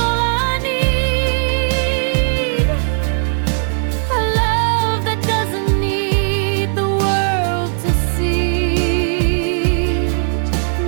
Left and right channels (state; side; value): silent; left; 68 dB below the other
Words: I need. A love that doesn't need the world to see.